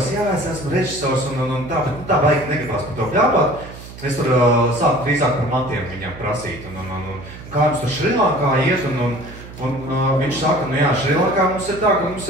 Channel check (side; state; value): right; noise; hum, 15 dB below the sound